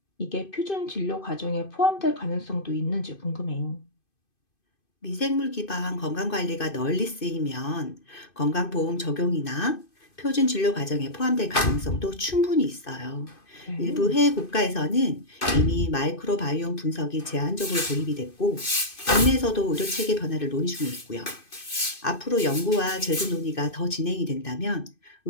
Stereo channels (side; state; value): right; late; 2.5 ms